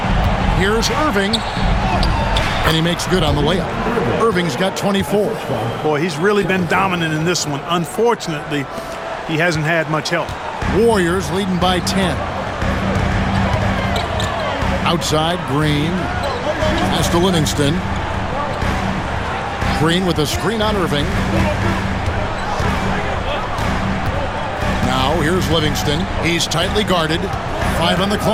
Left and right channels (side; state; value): both; identical; correlation 1.00